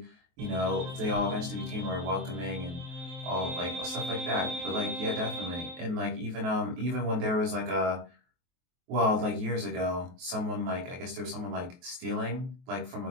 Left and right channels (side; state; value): left; late; 23 ms